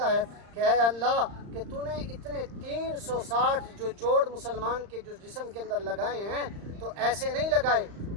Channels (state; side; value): late; left; 35 ms